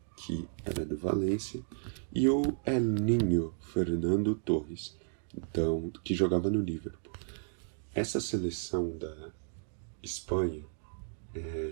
que era do Valência. E o El Niño Fernando Torres, então, que jogava no Liverpool. Essa seleção da Espanha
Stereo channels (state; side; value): silent; left; digital silence